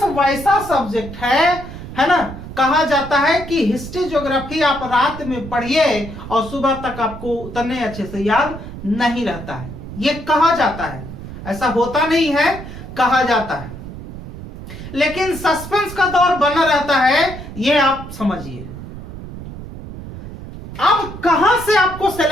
वैसा सब्जेक्ट है ना। कहा जाता है कि हिस्ट्री ज्योग्राफी आप रात में पढ़िए और सुबह तक आपको उतने अच्छे से याद नहीं रहता है, ये कहा जाता है। ऐसा होता नहीं है, कहा जाता है, लेकिन सस्पेंस का दौर बना रहता है, ये आप समझिए। अब कहां से आपको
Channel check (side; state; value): right; noise; rumble, 12 dB below the sound